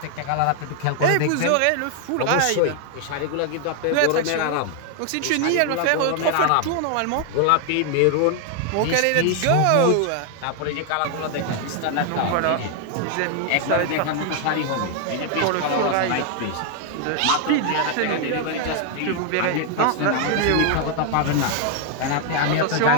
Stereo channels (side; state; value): both; different; correlation 0.00